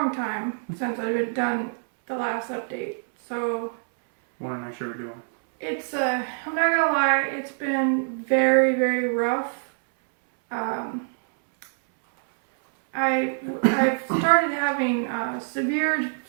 time since I've done the last update, so Want to make sure we're doing. it's I'm not gonna lie, it's been very, very rough. I've started having severe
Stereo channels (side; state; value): left; silent; 62 dB below the other